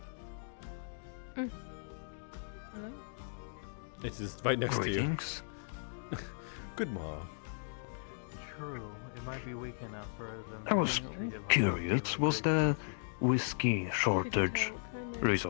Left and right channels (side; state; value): right; silent; digital silence